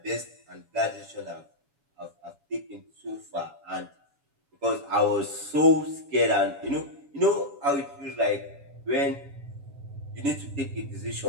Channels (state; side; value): late; left; 7.1 ms